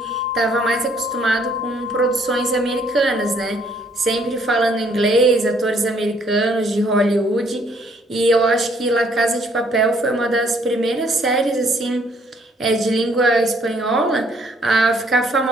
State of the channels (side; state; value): both; normal; correlation 0.65